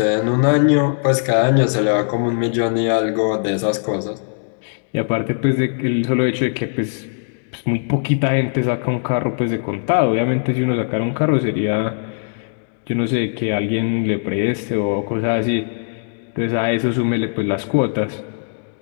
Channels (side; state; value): right; silent; digital silence